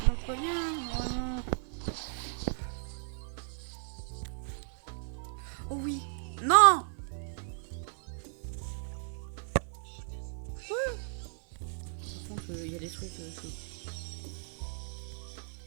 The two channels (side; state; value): left; silent; digital silence